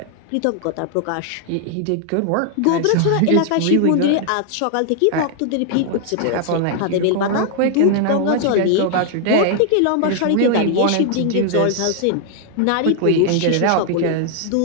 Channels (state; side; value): different; both; correlation 0.00